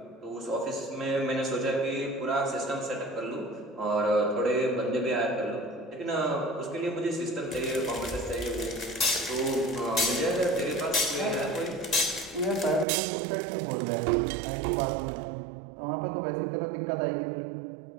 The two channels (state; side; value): drops out; left; at 12.9 s